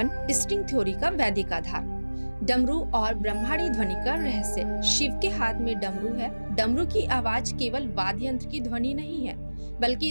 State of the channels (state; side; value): inverted; both; correlation -1.00